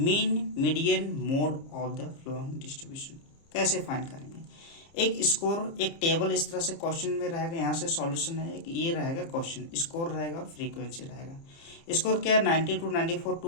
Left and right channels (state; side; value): late; right; 30 ms